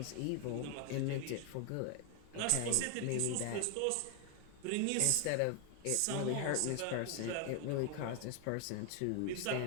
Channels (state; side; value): different; both; correlation 0.00